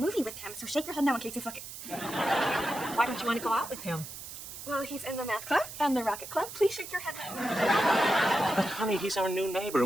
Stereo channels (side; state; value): right; noise; hiss, 11 dB below the sound